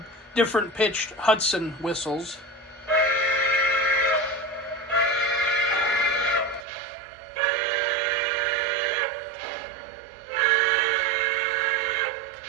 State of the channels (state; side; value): drops out; left; at 6.7 s